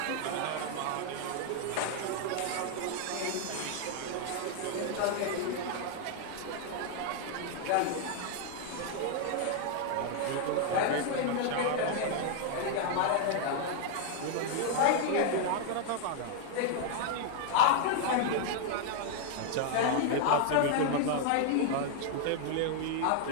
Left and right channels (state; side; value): different; both; correlation 0.00